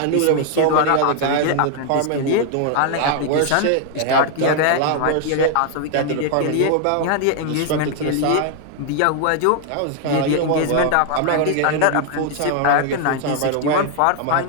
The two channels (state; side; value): different; both; correlation 0.00